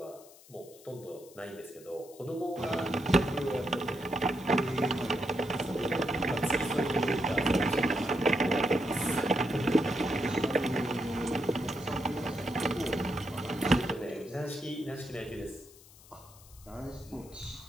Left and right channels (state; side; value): noise; left; hiss, 23 dB below the sound